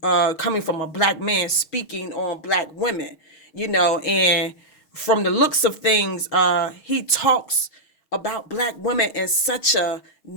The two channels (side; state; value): right; late; 6.3 ms